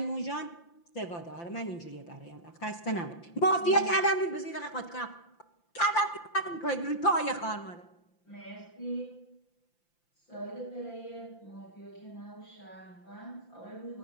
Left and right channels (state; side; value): late; right; 5.8 ms